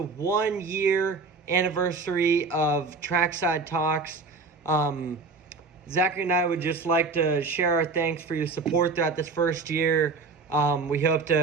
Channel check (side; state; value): left; quieter; 4.2 dB